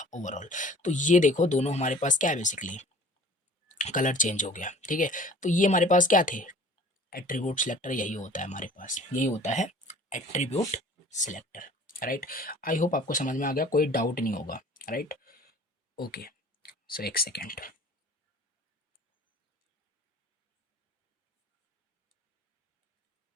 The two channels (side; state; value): both; normal; correlation 0.48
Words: ओवरऑल। तो ये देखो दोनों हमारे पास क्या है, बेसिकली कलर चेंज हो गया। ठीक है, तो ये हमारे पास क्या थे, एट्रीब्यूट सिलेक्टर, यही होता है हमारे पास, यही होता है attribute selector right. I hope आपको समझ में आ गया, कोई डाउट नहीं होगा राइट। ओके, सो एक सेकेंड,